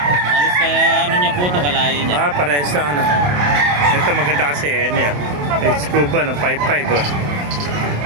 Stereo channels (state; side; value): late; left; 28 ms